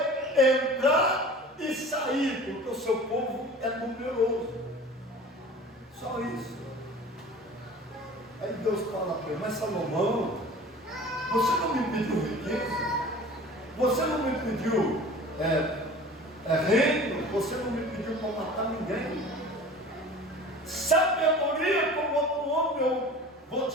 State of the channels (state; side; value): normal; both; correlation 0.41